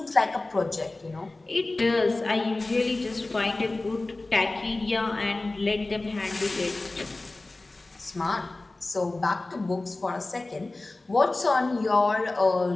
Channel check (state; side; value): quieter; right; 3.0 dB